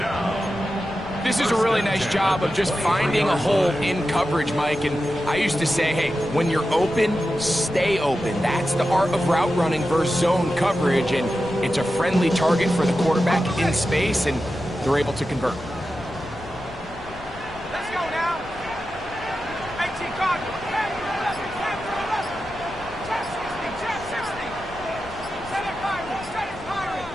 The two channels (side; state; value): left; noise; rumble, 17 dB below the sound